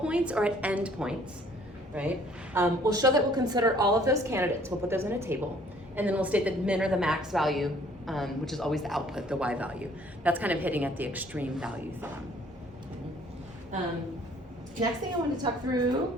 or at end points, right? We'll show that we'll consider all of those candidates. We'll put those in a table, and then we'll state that min or the max value, which is always the output, the y value. That's kind of hitting at the extreme value theorem. Next thing I want to talk through,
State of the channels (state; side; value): normal; both; correlation 0.58